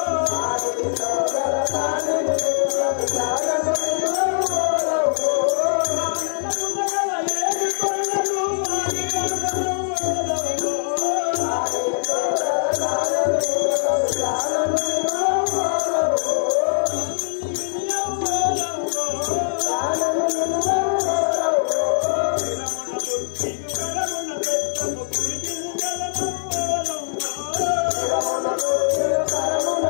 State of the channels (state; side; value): silent; right; 61 dB below the other